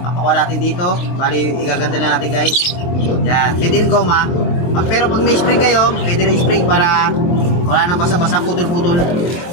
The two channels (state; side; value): late; right; 23 ms